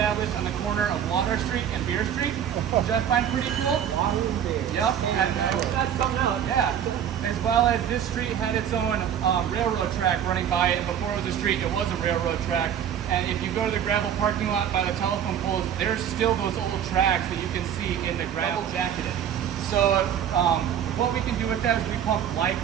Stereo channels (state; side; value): quieter; left; 9.3 dB